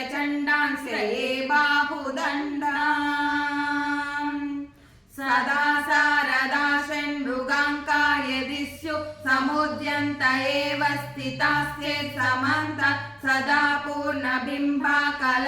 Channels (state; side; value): identical; both; correlation 1.00